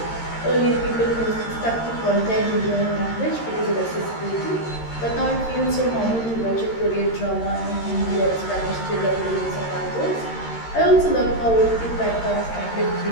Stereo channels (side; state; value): right; late; 13 ms